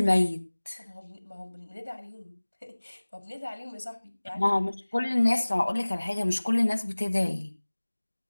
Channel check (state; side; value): inverted; both; correlation -1.00